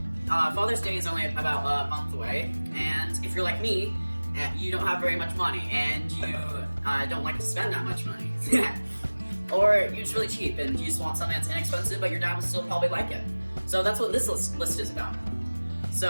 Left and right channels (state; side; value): inverted; both; correlation -1.00